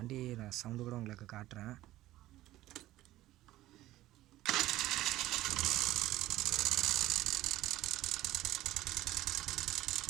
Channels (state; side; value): quieter; left; 15.7 dB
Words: நான் சவுண்டு கூட உங்களுக்கு காட்டுறேன்.